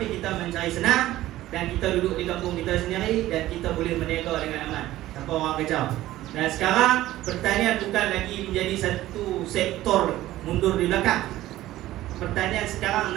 kita mencari senang. Dan kita duduk di kampung kita sendiri, dan kita boleh berniaga dengan aman tanpa orang kacau. Dan sekarang pertanian bukan lagi menjadi satu sektor mundur di belakang. Pertanian sekarang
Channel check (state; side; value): quieter; left; 15.3 dB